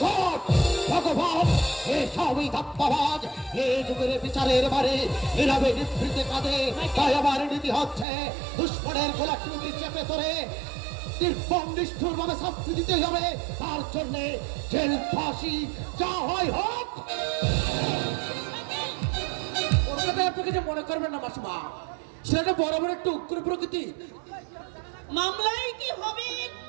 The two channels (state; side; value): drops out; left; at 8.1 s